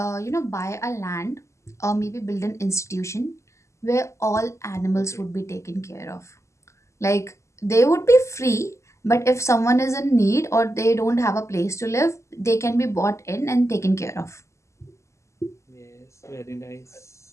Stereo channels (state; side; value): late; right; 0.14 ms